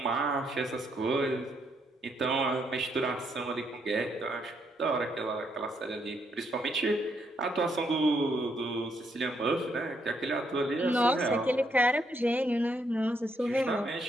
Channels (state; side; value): normal; both; correlation 0.75